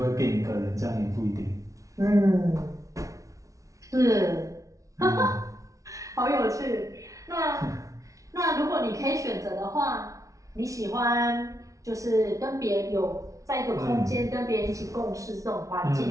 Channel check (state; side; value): late; left; 0.16 ms